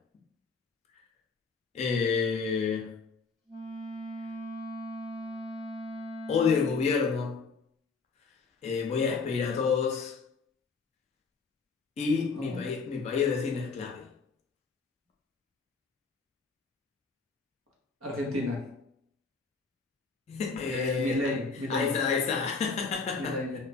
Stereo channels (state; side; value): quieter; right; 4.6 dB